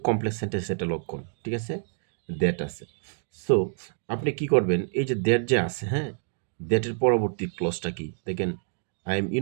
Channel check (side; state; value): left; silent; digital silence